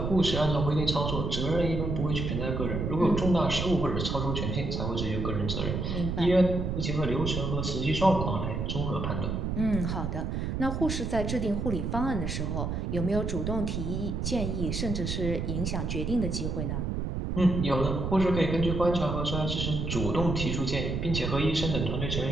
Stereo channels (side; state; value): right; noise; rumble, 2 dB below the sound